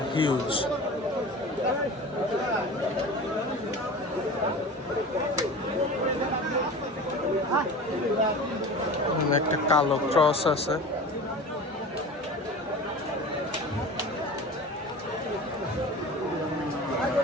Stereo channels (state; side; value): normal; both; correlation 0.35